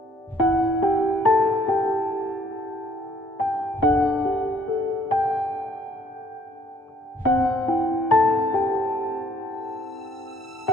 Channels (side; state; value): both; normal; correlation 0.63